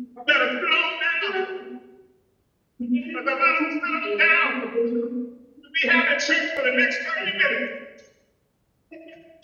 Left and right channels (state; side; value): identical; both; correlation 1.00